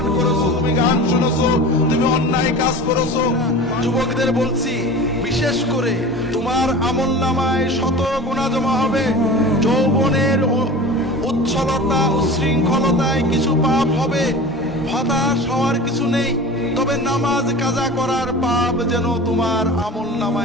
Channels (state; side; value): normal; both; correlation 0.35